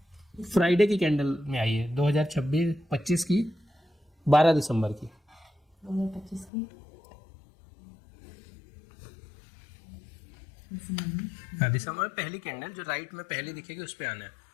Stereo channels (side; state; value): right; drops out; at 6.5 s